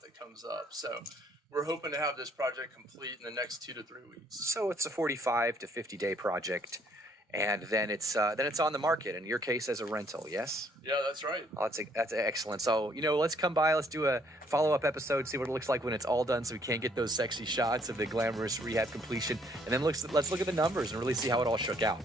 that comes up. So we're hoping to have this project complete in the next 2 to 3 weeks. So it's a 45 to 50 day project, and then it's on the market. In your case, as a rental, yes? Yeah, that's right. Oh, that's excellent. So let's come by. Let's do a follow-up episode, see what it looks like when it's all done, so we can't get those sexy shots of the glamorous rehab completion. And then let's look at the numbers and really see how it all shook out.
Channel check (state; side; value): normal; both; correlation 0.66